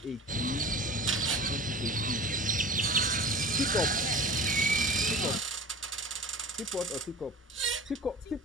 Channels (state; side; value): normal; both; correlation 0.37